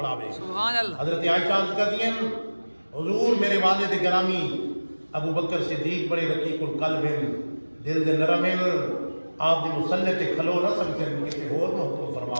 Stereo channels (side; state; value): both; inverted; correlation -1.00